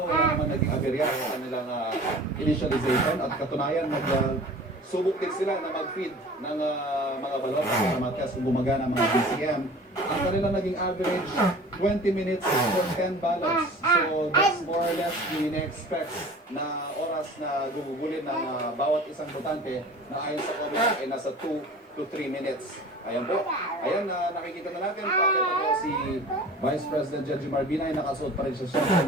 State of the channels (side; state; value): both; normal; correlation 0.42